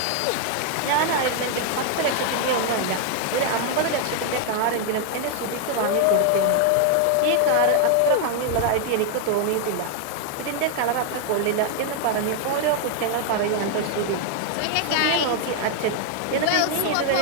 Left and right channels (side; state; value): both; different; correlation 0.00